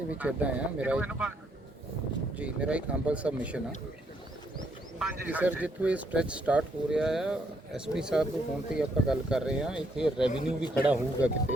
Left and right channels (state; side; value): normal; both; correlation 0.72